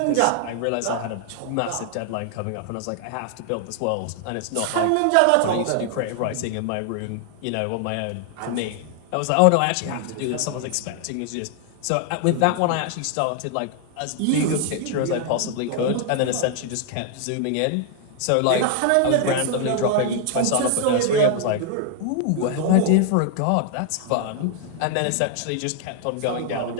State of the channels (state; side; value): different; both; correlation 0.00